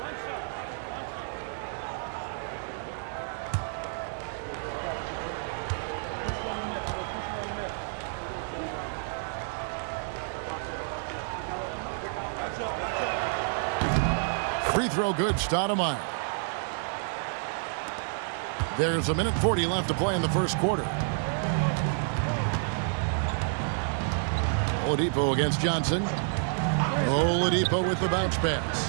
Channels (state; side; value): silent; left; digital silence